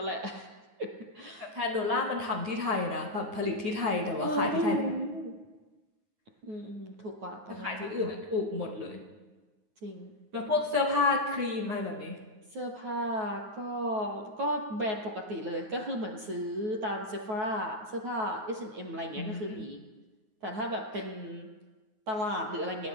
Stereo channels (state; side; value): late; left; 9.5 ms